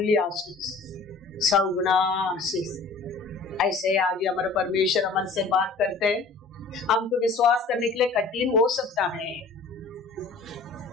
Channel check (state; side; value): quieter; right; 4.2 dB